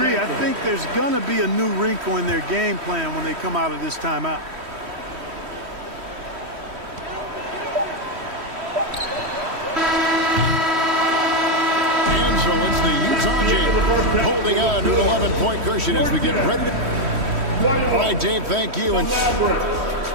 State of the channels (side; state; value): left; late; 3.1 ms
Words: I think there's going to be a new wrinkle in their game plan when they come out of this timeout. So it's the Utah Jazz holding on to an 11-point cushion as we get ready to... All right, Dave, thank you. And